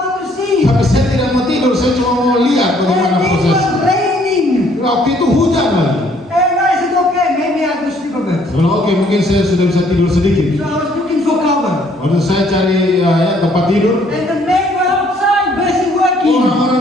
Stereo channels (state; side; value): normal; both; correlation 0.64